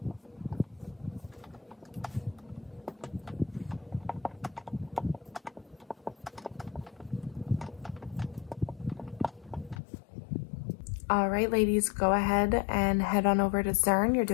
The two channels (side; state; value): right; drops out; at 9.8 s